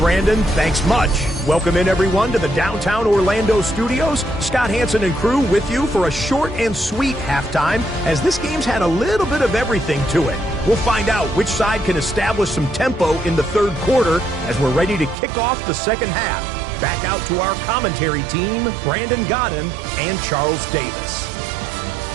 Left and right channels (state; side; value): drops out; left; at 15.2 s